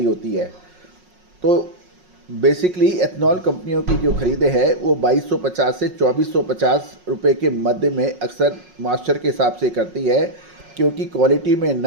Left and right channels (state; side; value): late; left; 5.5 ms